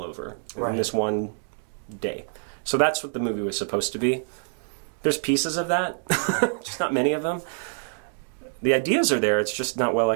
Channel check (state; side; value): silent; left; digital silence